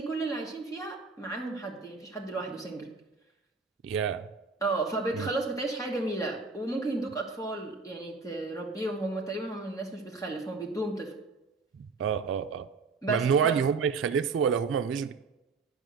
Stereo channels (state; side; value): quieter; left; 4.5 dB